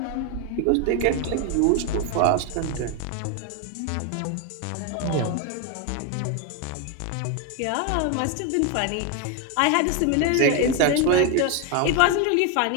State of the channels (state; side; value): different; both; correlation 0.01